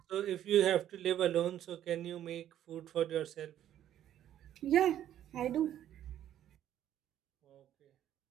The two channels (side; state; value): left; quieter; 11.4 dB